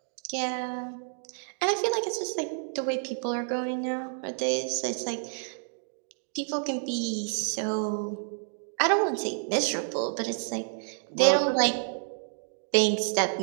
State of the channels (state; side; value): silent; left; digital silence